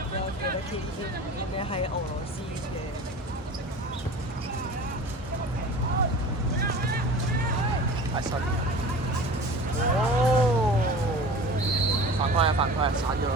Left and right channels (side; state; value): both; normal; correlation 0.38